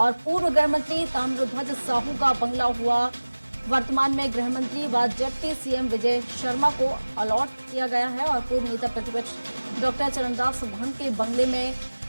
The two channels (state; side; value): inverted; both; correlation -1.00